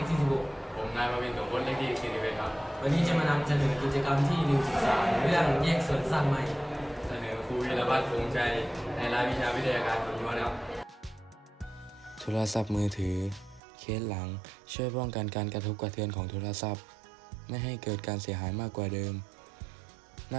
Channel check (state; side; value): drops out; left; at 13.6 s